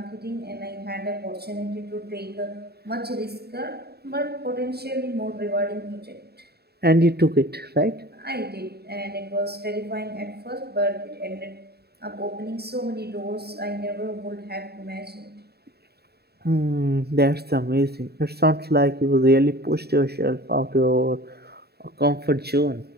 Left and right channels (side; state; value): left; late; 0.47 ms